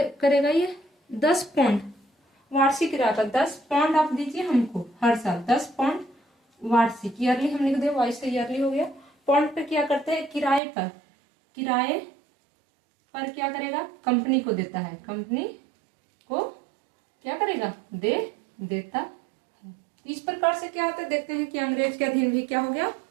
करेगा ये, 10 पाउंड वार्षिक रहता, 10 पाउंड आप दीजिए हमको हर साल, 10 पाउंड वार्षिक, ईयरली हम लिख दे, वाइस से ईयरली हो गया। पाउंड पे क्या करते हैं, किराए पर क्या करेगा, कंपनी को देता है, कंपनी को क्या करेगा, देता है। इस प्रकार से क्या होता है, देखते हैं कि अंग्रेज के अधीन भी क्या हो गया,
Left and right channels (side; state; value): left; drops out; at 10.6 s